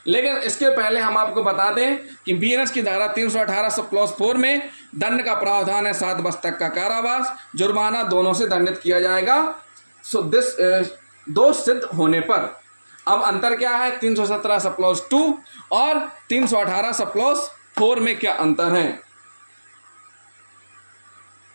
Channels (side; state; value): both; inverted; correlation -1.00